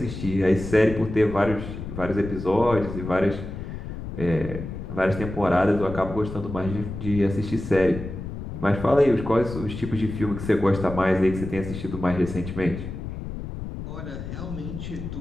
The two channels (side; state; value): left; noise; rumble, 8 dB below the sound